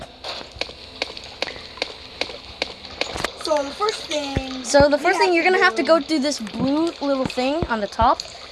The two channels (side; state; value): both; identical; correlation 1.00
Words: So the first thing. You're gonna have to go through this blue little thing on the top